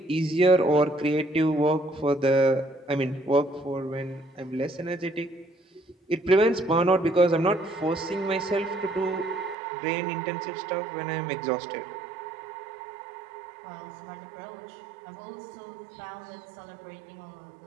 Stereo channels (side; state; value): left; drops out; at 9.6 s